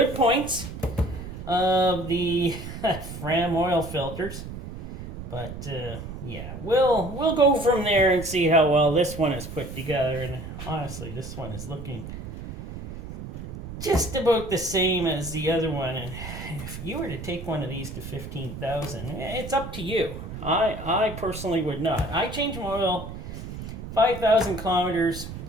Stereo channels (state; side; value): noise; right; rumble, 10 dB below the sound